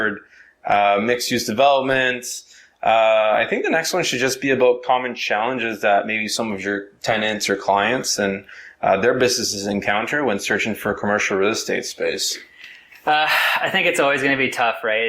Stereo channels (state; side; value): identical; both; correlation 1.00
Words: mixed use development. I think the next one should just be about common challenges that maybe some of your tenants or clients and their businesses encounter when searching for commercial real estate space. I think it's always going to be tough, right?